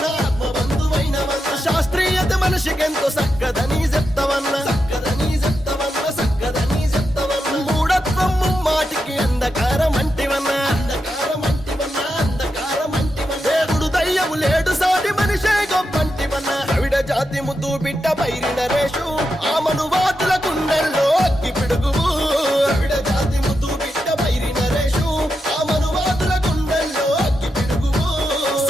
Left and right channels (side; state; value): both; normal; correlation 0.87